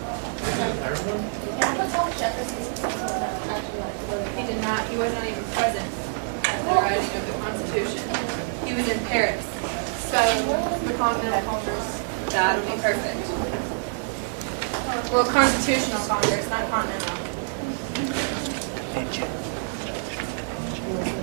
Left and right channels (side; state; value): left; silent; digital silence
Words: He did not. He wasn't even present at the writing of the Constitution. He was in Paris. So the Continental Congress. That'll be perfect. Well, Constitutional Congress, not Continental.